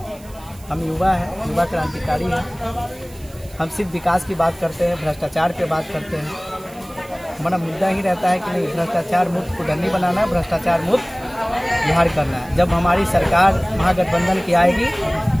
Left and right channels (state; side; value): noise; right; hiss, 24 dB below the sound